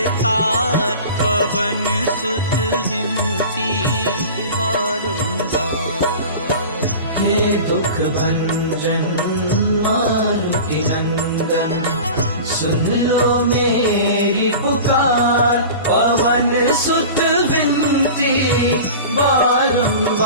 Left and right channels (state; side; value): inverted; both; correlation -0.35